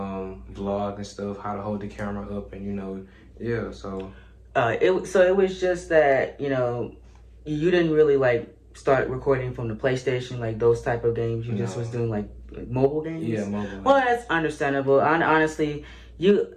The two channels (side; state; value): both; identical; correlation 1.00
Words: and stuff, how to hold the camera up, and you know, yeah. So it was just that, you know, you didn't really like start recording from the PlayStation, like those type of games. You just was doing like mobile games. Yeah, mobile. Well, that's understandable. Honestly,